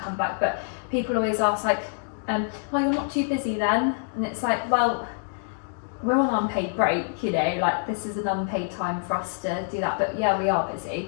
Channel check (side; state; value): right; silent; digital silence